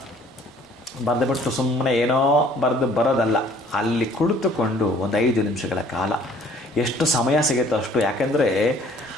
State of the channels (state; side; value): normal; both; correlation 0.56